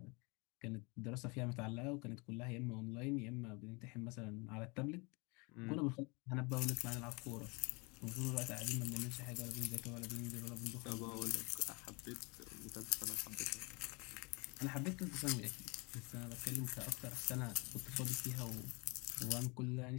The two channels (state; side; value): quieter; right; 29.2 dB